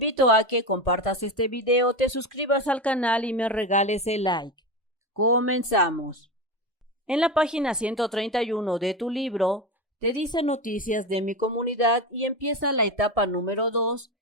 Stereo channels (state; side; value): normal; both; correlation 0.20